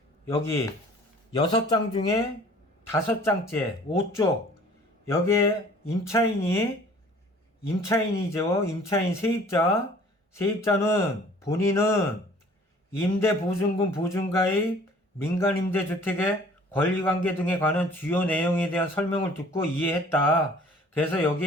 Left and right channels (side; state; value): both; normal; correlation 0.51